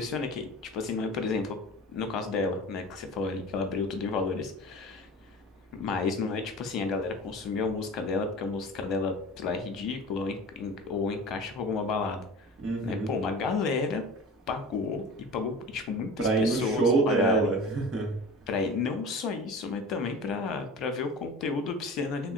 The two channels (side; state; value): both; normal; correlation 0.37